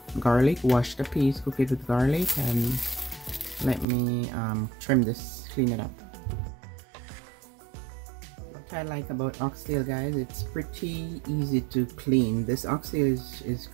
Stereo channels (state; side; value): drops out; left; at 3.9 s